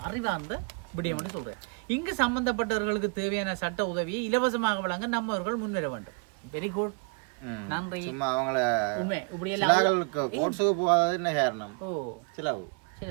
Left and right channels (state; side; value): quieter; left; 37.6 dB